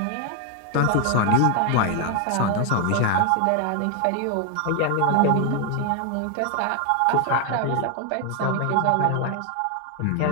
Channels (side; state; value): both; different; correlation 0.01